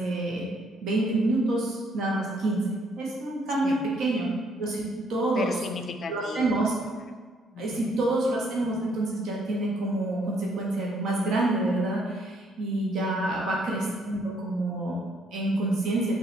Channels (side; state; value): both; normal; correlation 0.68